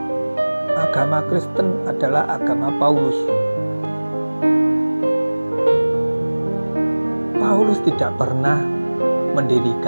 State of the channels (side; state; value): both; inverted; correlation -1.00